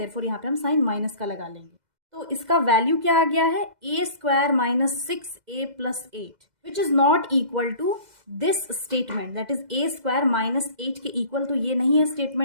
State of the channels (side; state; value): left; late; 2.0 ms